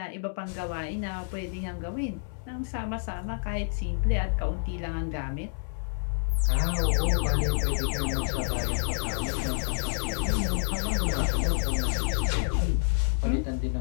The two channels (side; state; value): right; silent; 59 dB below the other